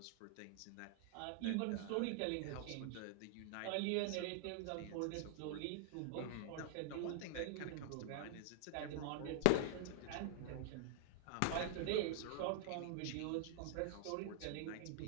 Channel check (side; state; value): both; different; correlation -0.01